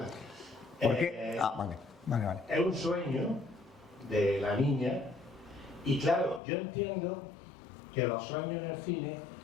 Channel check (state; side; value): drops out; right; at 6.4 s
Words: ¿Por qué? Vale. Es un sueño de la niña y claro, yo entiendo que los sueños en el cine